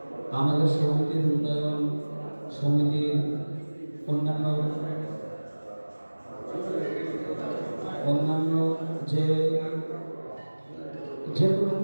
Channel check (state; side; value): inverted; both; correlation -1.00